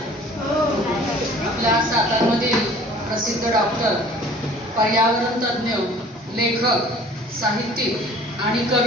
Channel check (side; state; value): both; normal; correlation 0.49